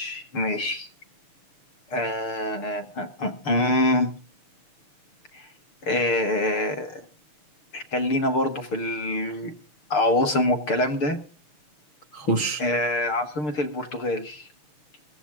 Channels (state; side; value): late; right; 6.7 ms